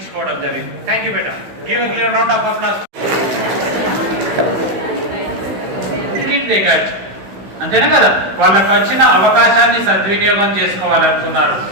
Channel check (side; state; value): left; late; 15 ms